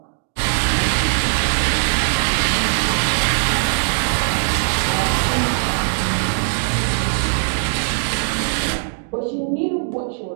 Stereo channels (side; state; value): left; silent; digital silence